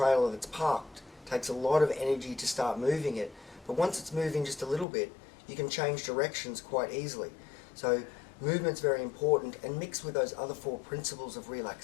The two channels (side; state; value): right; drops out; at 4.9 s